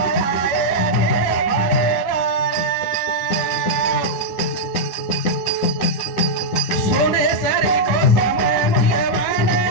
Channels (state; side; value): late; right; 10 ms